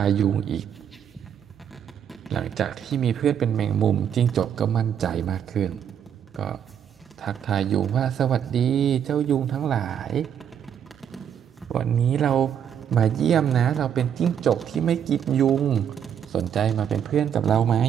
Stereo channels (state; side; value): quieter; left; 8.8 dB